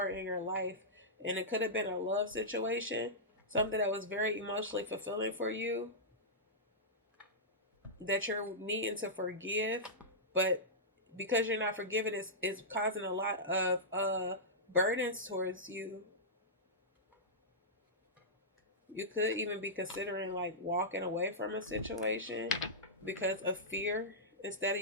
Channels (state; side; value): normal; both; correlation -0.13